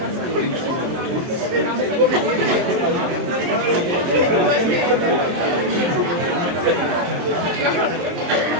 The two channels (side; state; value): left; late; 23 ms